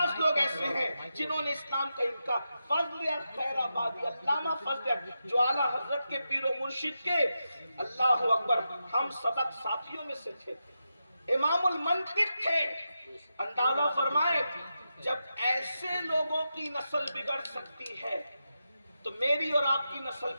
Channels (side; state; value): both; inverted; correlation -0.88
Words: لوگ ایسے ہیں جنہوں نے اسلام کا انکار. فضل خیر آبادی, علامہ فضل جو اعلیٰ حضرت کے پیر و مرشد کے اللہ اکبر ہم سبق ساتھیوں میں سے تھے, امام المنطق تھے. اندازہ فرمائے جب ایسے لوگوں کی نسل بگڑ سکتی ہے تو میری اور آپ کی نسل